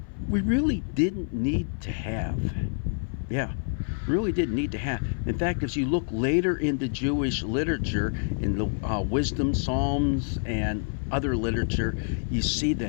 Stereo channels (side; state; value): right; silent; 56 dB below the other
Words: we really didn't need to have. Yeah, really didn't need to have. In fact, if you look later into Jewish literature, in the wisdom, Psalms, and other literature, you see